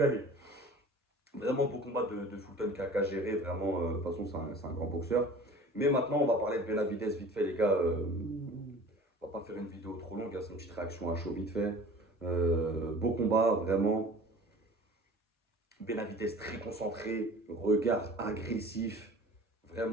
Vraiment beau combat de Fulton qui a géré. Vraiment, de toute façon, c'est un grand boxeur. Mais maintenant, on va parler de Benavidez vite fait, les gars. On va pas faire une vidéo trop longue, hein, c'est une petite réaction à chaud vite fait. Beau combat, vraiment. Benavidez très concentré, regard agressif.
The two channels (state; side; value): normal; both; correlation 0.43